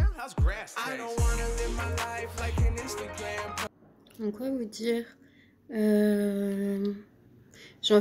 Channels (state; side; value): identical; both; correlation 1.00